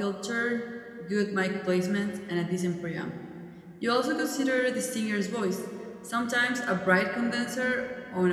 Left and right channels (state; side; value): identical; both; correlation 1.00